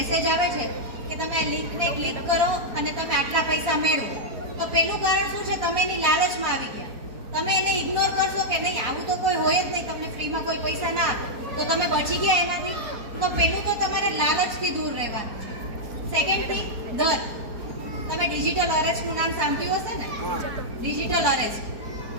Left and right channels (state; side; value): late; left; 4.2 ms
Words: આવે છે કે તમે આ લિંકને ક્લિક કરો અને તમે આટલા પૈસા મેળવો, તો પહેલું કારણ શું છે? તમે એની લાલચમાં આવી ગયા. તમે એને ઇગ્નોર કરશો કે નહીં આવું તો કોઈ હોય જ નહીં, તમને ફ્રીમાં કોઈ પૈસા ના આપે, તો તમે બચી ગયા એનાથી. તો પહેલું તો તમારે લાલચથી દૂર રહેવાનું છે. સેકન્ડ થિંગ, દર. તમે ડિજિટલ અરેસ્ટનું નામ સાંભળ્યું હશે ને? હા. Digital arrest.